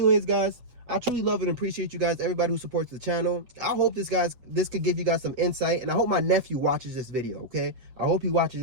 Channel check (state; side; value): late; left; 7.8 ms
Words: guys, I truly love and appreciate you guys, everybody who supports the channel. I hope this could give you guys some insight. And I hope my nephew watches this video, okay? I hope he watches